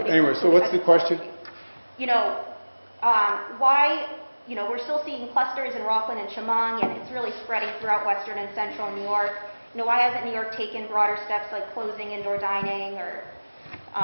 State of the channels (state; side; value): inverted; both; correlation -1.00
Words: including anyway, so what's the question? Why, we're still seeing clusters in Rockland and Chemung, and it's really spreading throughout western and central New York. Why hasn't New York taken broader steps like closing indoor dining or